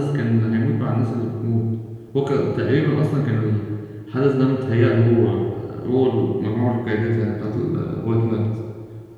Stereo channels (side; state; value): both; identical; correlation 1.00